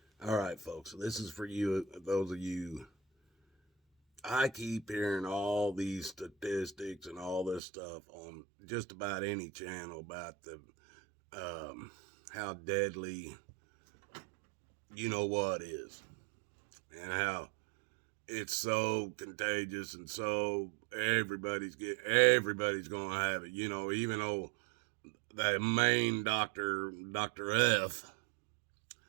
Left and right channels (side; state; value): left; drops out; at 7.6 s